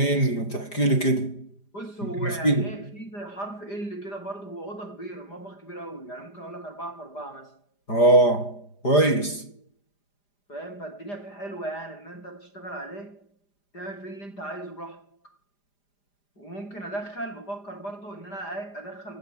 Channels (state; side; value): late; right; 5.0 ms